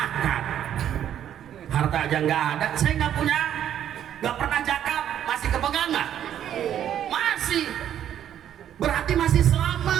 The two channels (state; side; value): quieter; left; 10.4 dB